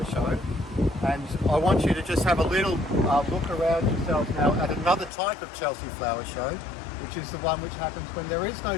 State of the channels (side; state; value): right; drops out; at 5.1 s